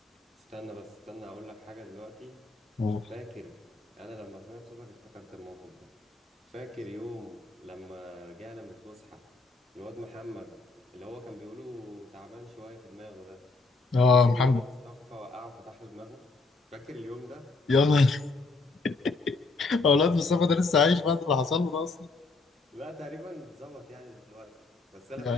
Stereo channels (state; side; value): quieter; right; 3.8 dB